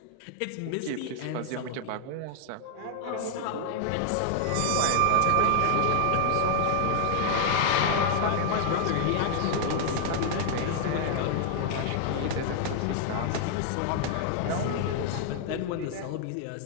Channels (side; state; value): both; different; correlation 0.00